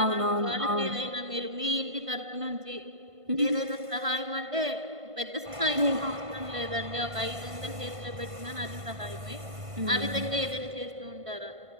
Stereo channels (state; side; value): late; left; 1.5 ms